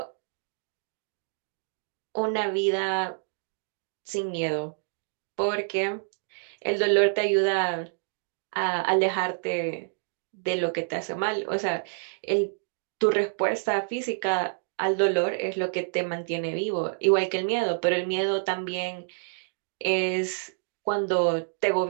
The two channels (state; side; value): silent; left; digital silence